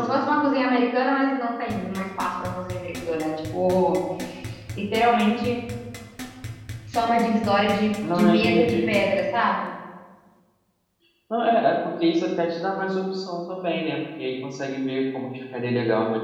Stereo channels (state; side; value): identical; both; correlation 1.00